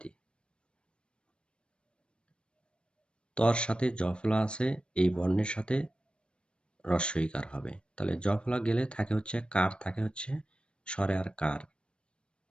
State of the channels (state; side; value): late; right; 0.055 ms